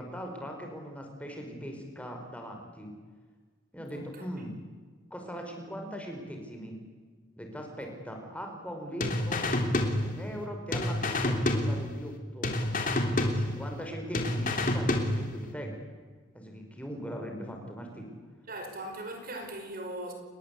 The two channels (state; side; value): normal; both; correlation 0.61